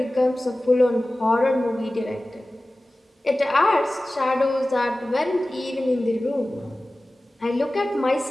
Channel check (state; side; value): normal; both; correlation 0.97